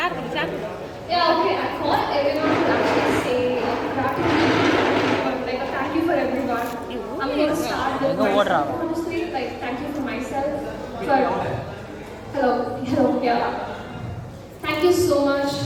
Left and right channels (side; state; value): both; identical; correlation 1.00